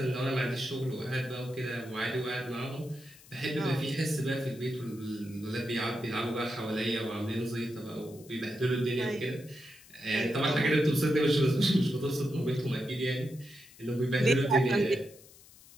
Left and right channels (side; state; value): left; noise; hiss, 23 dB below the sound